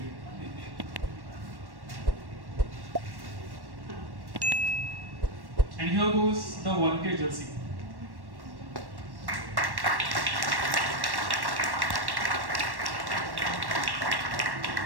And here goes the volunteer jersey.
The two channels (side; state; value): left; late; 1.1 ms